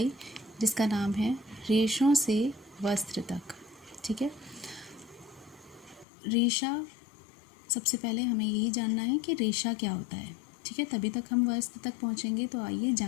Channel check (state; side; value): drops out; right; at 6.1 s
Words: जिसका नाम है रेशों से वस्त्र तक। ठीक है, रेशा, सबसे पहले हमें यही जानना है कि रेशा क्या होता है। ठीक है, तभी तक हम वस्त्र तक पहुंचेंगे। तो आइए